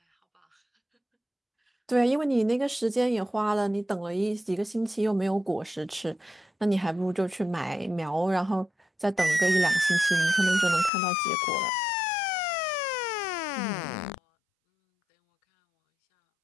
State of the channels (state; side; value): drops out; right; at 10.9 s